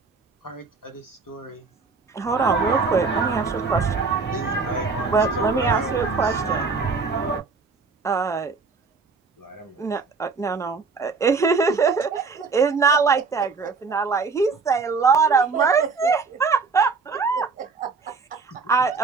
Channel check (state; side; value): quieter; left; 4.6 dB